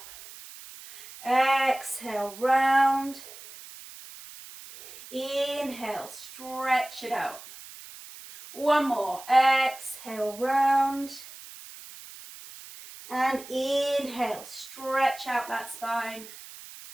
Exhale, round. Inhale, stretch it out. One more, exhale, round. And inhale, stretch out that spine.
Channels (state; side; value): noise; right; hiss, 16 dB below the sound